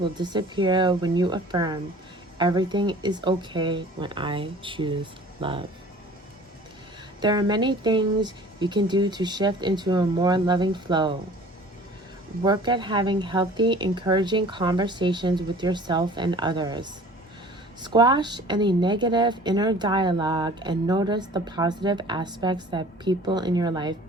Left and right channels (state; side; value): normal; both; correlation 0.47